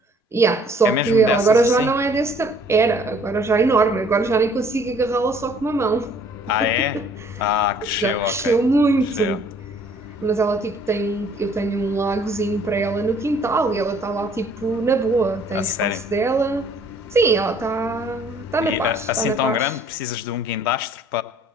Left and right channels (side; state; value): both; normal; correlation 0.58